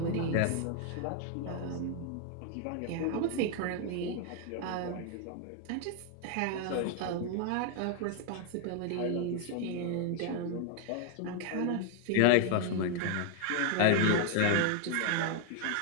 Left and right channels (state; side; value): different; both; correlation 0.00